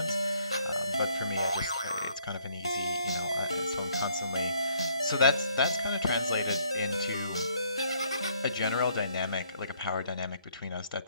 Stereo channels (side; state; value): both; inverted; correlation -0.67